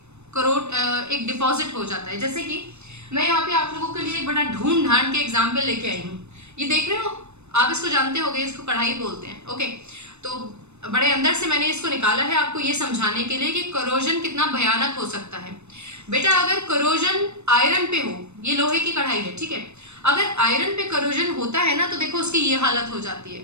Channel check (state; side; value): late; left; 0.81 ms